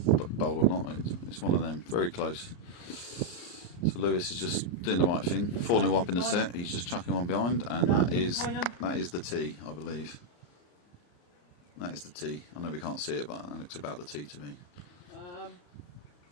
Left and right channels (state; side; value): late; right; 34 ms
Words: bowl or not. It's one of them. Very close. So Lewis is just doing the right thing. 4-0 up in the set. He's just chucking one behind, and that is the tee, I believe. That is the tee. I know we can't see it, but that looks about the tee to me.